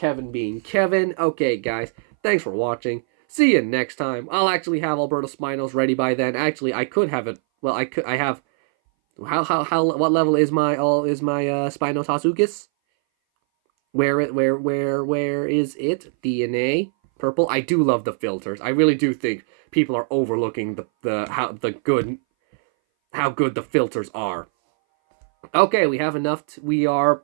being Kevin. Okay, guys. Thanks for watching. See you next time. I'll actually have Alberto Spinos ready by then. Actually, I could have it. Well, I have... what level is my Spinos Hasukis? Where is it? DNA? Purple. I do love the filters. I really do think people are overlooking how good the filters are. Okay, we have enough. We are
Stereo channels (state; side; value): silent; left; 60 dB below the other